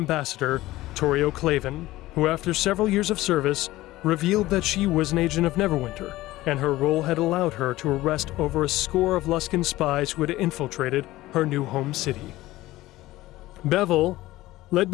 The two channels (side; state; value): right; quieter; 17.2 dB